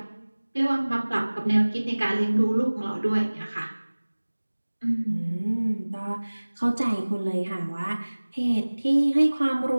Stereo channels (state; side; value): inverted; both; correlation -1.00